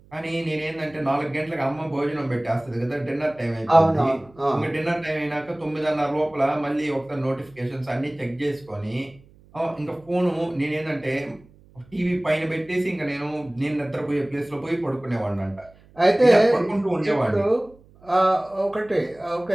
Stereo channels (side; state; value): right; noise; hum, 27 dB below the sound